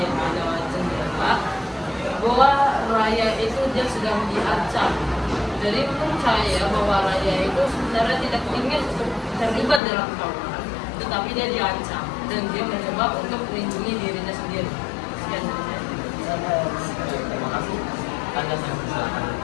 lewat jendela bahwa Raya itu dia sedang diancam Jadi menurut saya bahwa Raya itu sebenarnya tidak ingin untuk terlibat dalam tawuran, tetapi dia diancam dan dia mencoba untuk melindungi dirinya sendiri. Sekian dari saya. Terima kasih. Anda saya persilakan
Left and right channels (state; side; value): drops out; right; at 9.8 s